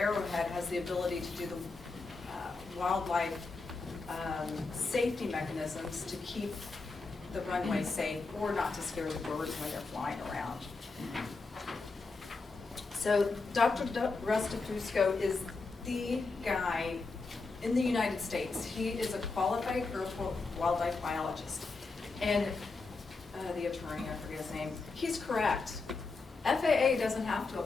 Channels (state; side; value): quieter; right; 4.0 dB